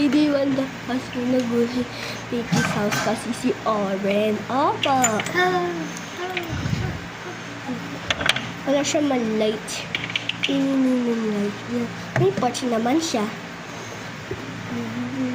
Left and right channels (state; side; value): identical; both; correlation 1.00